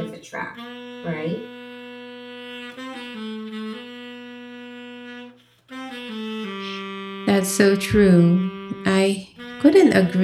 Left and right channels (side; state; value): both; identical; correlation 1.00